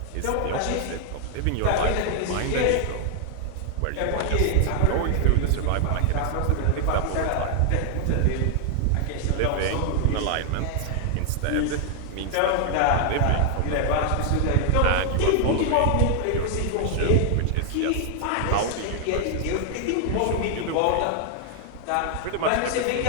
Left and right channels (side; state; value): both; different; correlation 0.00